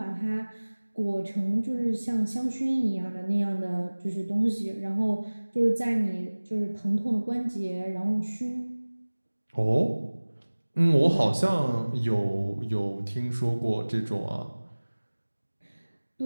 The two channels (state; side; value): inverted; both; correlation -1.00